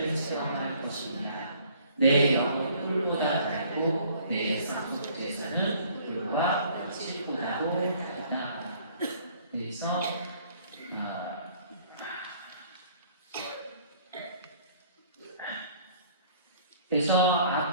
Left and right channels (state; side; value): inverted; both; correlation -0.57